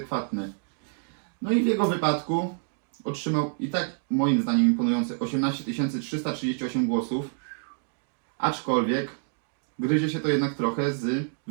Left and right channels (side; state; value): left; silent; digital silence